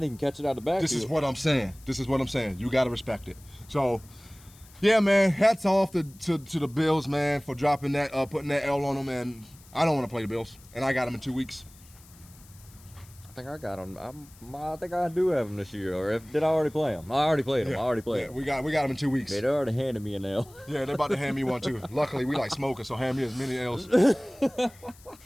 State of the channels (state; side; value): noise; left; hiss, 24 dB below the sound